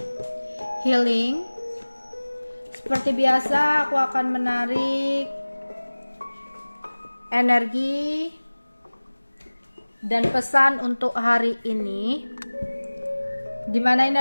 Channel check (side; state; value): both; inverted; correlation -1.00